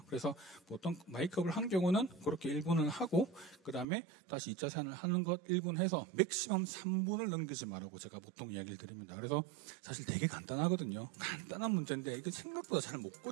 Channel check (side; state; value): left; drops out; at 3.9 s